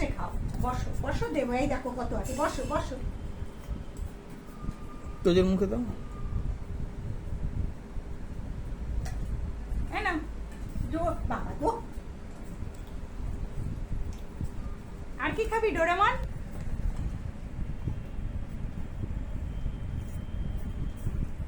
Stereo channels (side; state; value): both; identical; correlation 1.00